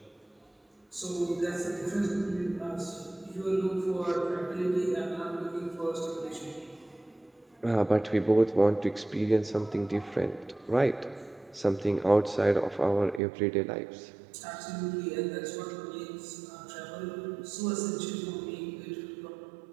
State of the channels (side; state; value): left; drops out; at 13.2 s